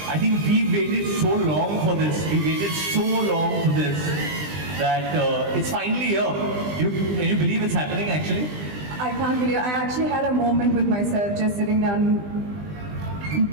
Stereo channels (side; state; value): left; late; 20 ms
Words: I think we waited so long for this. We waited so long for this that it's finally here. Can you believe it's happening actually? I can't believe I actually had a moment with myself just sitting down.